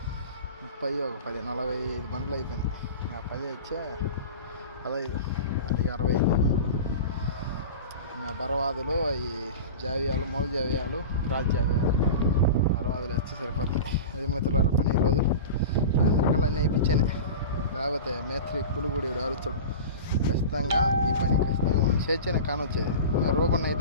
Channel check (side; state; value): both; inverted; correlation -0.31